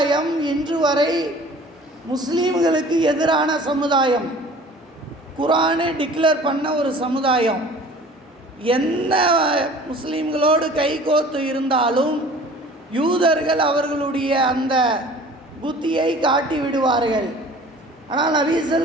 இன்று வரை முஸ்லீம்களுக்கு எதிரான சமுதாயம், குர்ஆனை டிக்ளேர் பண்ண ஒரு சமுதாயம். என்ன முஸ்லீம்களோடு கைகோத்து இருந்தாலும் யூதர்கள் அவர்களுடைய அந்த புத்தியை காட்டி விடுவார்கள். ஆனால் நபி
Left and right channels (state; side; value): normal; both; correlation 0.46